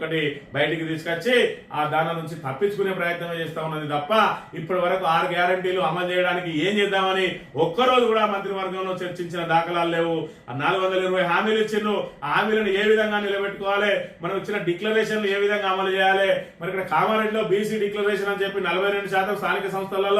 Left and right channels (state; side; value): identical; both; correlation 1.00